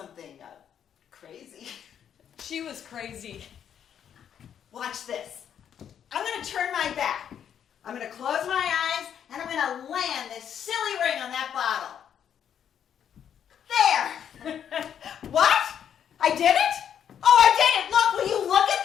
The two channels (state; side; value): quieter; right; 8.9 dB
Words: crazy. She was crazy. Watch this. I'm going to turn my back. I'm going to close my eyes, and I'm going to land this silly ring on that bottle. There! What? I did it? Oh, I did it! Look, will you look at